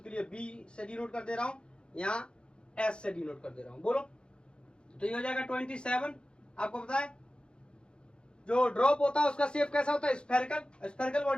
के लिए बी से डिनोट कर दे रहा हूं, यहां एस से डिनोट कर दे रहा हूं। बोलो तो ये हो जाएगा 27। आपको पता है जो ड्रॉप होता है उसका शेप कैसा होता है, स्फेरिकल, स्फेरिकल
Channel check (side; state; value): right; late; 0.053 ms